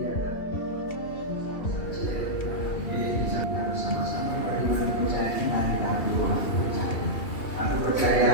Bisa bersama-sama bagaimana percaya kita dalam ruang percaya. Aku percaya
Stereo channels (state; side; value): late; right; 2.7 ms